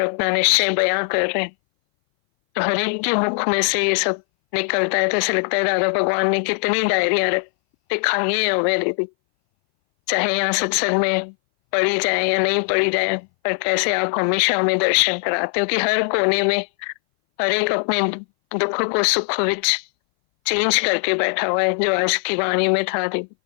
अपना निश्चय बयां कर रहे हैं। तो हर एक के मुख में से ये सब निकलता है, तो ऐसा लगता है दादा भगवान ने कितनी डायरियां दिखाई है हमें दीदी। चाहे यहाँ सत्संग में पढ़ी जाए या नहीं पढ़ी जाए, और कैसे आप हमेशा हमें दर्शन कराते हो कि हर कोने में हर एक अपने दुख को सुख विच चेंज करके बैठा हुआ है, जो आज की वाणी में था दीदी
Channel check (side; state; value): right; silent; 60 dB below the other